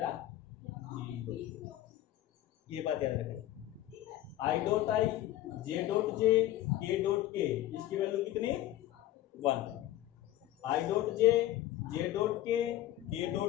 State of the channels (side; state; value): right; quieter; 14.3 dB